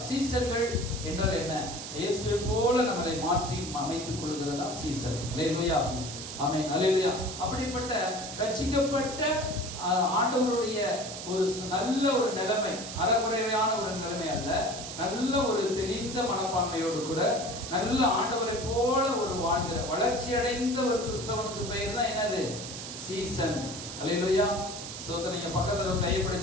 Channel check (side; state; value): right; noise; hiss, 9 dB below the sound